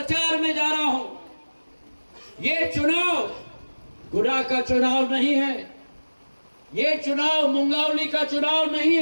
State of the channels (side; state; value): both; inverted; correlation -1.00